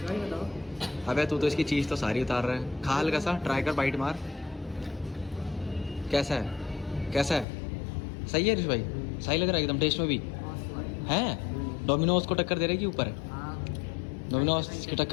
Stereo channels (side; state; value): right; drops out; at 7.5 s